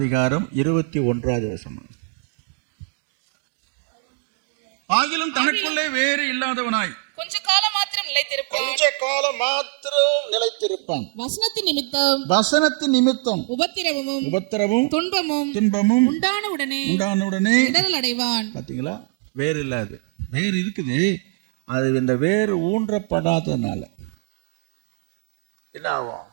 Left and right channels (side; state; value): left; silent; digital silence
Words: 21வது வசனம். ஆகிலும் தனக்குள்ளே வேறு இல்லாதவனாய் கொஞ்ச காலம் மாத்திரம் நிலைத்திருப்பான். வசனத்தின் நிமித்தம் உபத்திரவமும் துன்பமும் உண்டான உடனே இடரல் அடைவான். பாத்தீங்களா? வேறு இல்லாது, வேறு இருக்குது. அது இந்த வேறு ஊன்றப்படாதனால என்ன ஆகும்?